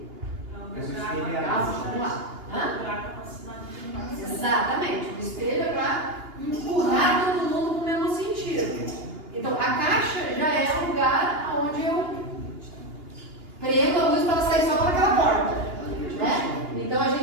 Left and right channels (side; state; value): left; late; 2.8 ms